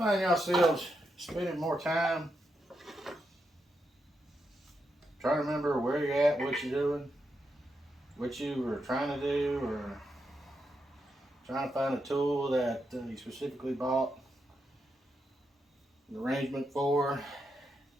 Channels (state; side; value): normal; both; correlation 0.84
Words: yourselves spending more time trying to remember where you're at, what you're doing, what you were trying to do, or trying to find a tool that you specifically bought an arrangement for